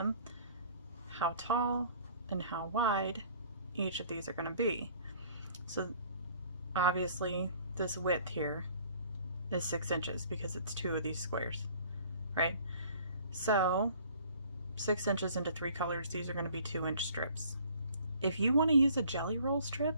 how tall and how wide each of these are going to be. So obviously this width here is 6 inches because it's 2 of these squares, right? So 6 inches into 3 colors, these are going to be 2-inch strips. If you want to use a jelly roll strip,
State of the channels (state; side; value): inverted; both; correlation -0.54